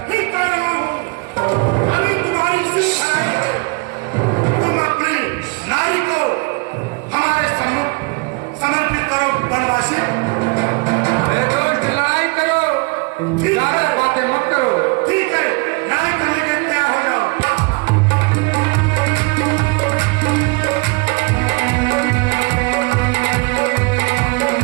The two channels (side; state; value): left; quieter; 28.8 dB